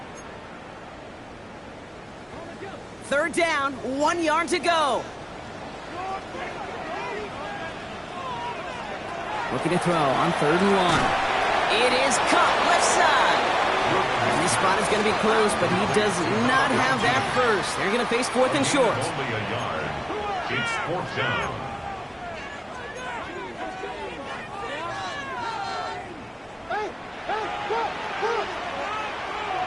Third down, 1 yard to go. Looking to throw on 3rd and 1. It is caught left side. And this spot is going to be close, but he does not have that first. They're going to face 4th and short. Only a yard. It's 4th down.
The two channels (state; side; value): identical; both; correlation 1.00